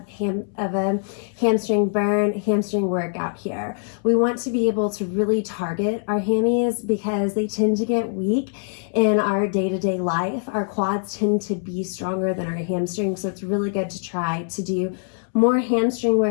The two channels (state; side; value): silent; right; 63 dB below the other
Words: a hamstring burn, hamstring workout here. We want to be able to really target our hammies because they tend to get weak in our day-to-day life. Our quads tend to be stronger than our hamstrings, so it's really good to try to do more hamstring